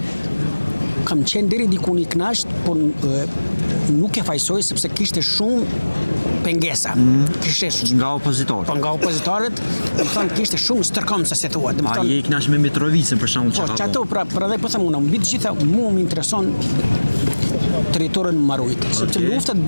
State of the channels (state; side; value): inverted; both; correlation -1.00